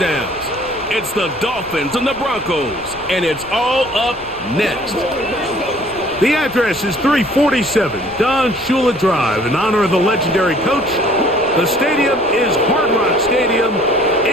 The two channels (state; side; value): noise; left; rumble, 21 dB below the sound